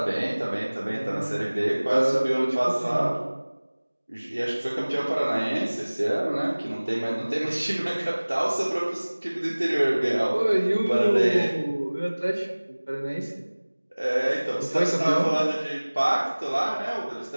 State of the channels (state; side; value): inverted; both; correlation -1.00